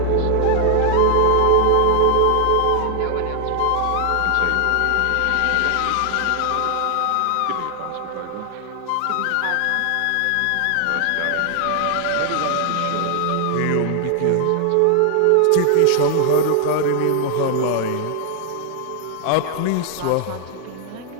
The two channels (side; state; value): both; different; correlation 0.00